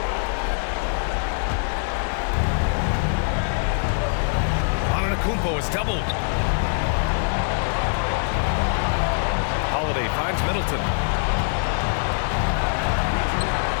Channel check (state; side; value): silent; right; digital silence